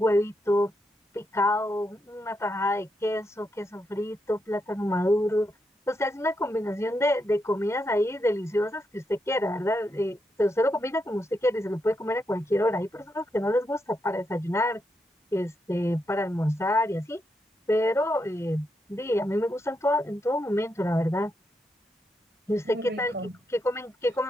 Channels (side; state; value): both; normal; correlation 0.82